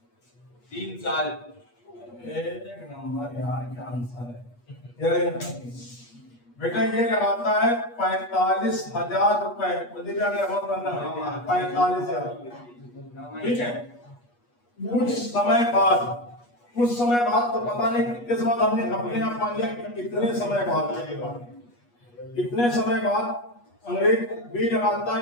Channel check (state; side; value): late; right; 8.3 ms